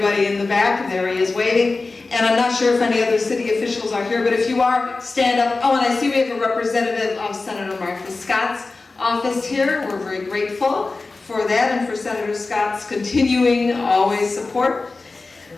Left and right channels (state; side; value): quieter; right; 3.7 dB